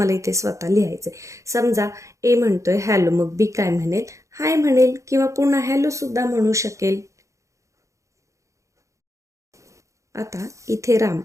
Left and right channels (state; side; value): late; left; 0.15 ms